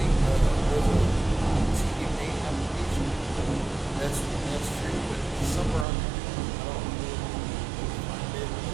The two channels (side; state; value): left; drops out; at 5.9 s